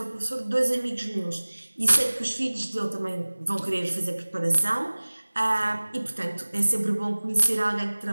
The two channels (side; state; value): both; inverted; correlation -1.00